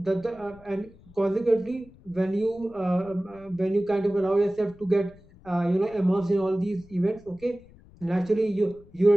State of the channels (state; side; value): noise; left; rumble, 25 dB below the sound